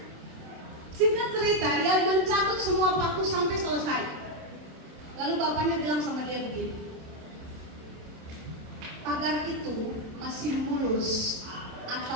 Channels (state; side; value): late; left; 27 ms